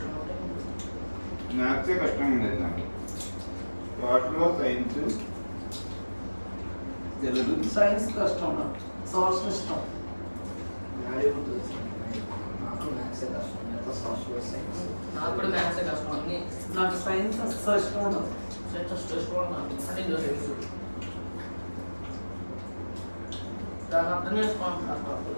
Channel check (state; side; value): inverted; both; correlation -1.00